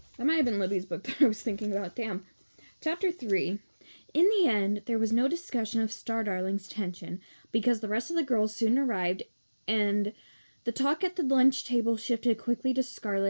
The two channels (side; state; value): both; inverted; correlation -1.00